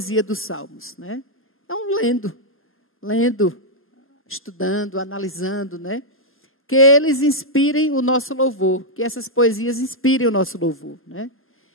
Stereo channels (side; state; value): both; normal; correlation -0.04